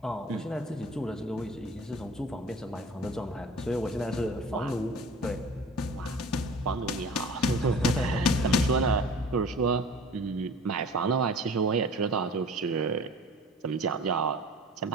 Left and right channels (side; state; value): both; normal; correlation 0.42